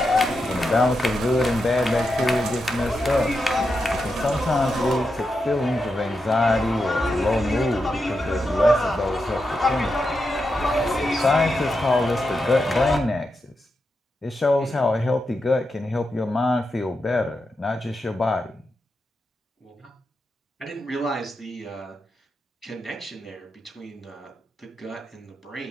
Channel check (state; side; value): normal; both; correlation 0.87